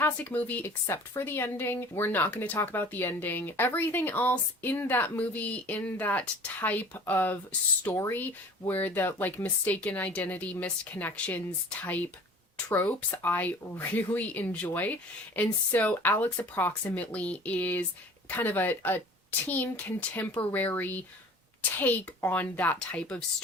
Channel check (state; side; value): normal; both; correlation 0.45